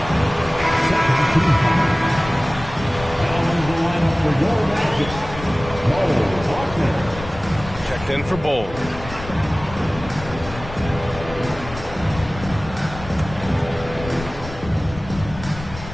Checked in for Bowl.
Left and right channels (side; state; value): left; noise; rumble, 13 dB below the sound